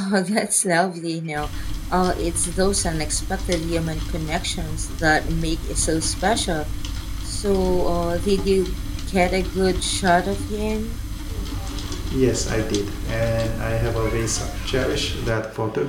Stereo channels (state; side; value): identical; both; correlation 1.00